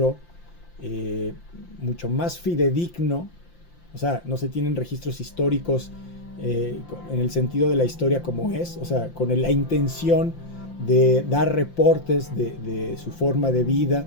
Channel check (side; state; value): right; late; 5.8 ms